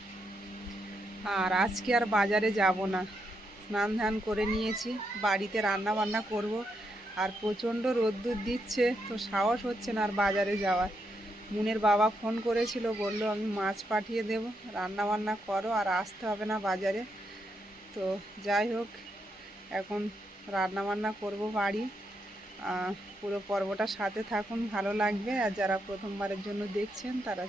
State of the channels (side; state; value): both; normal; correlation 0.81